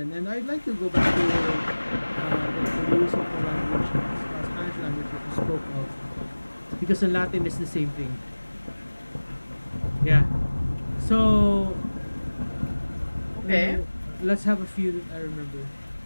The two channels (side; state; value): both; inverted; correlation -1.00